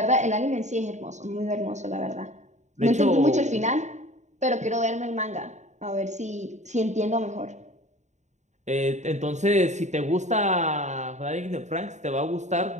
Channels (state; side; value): late; left; 0.34 ms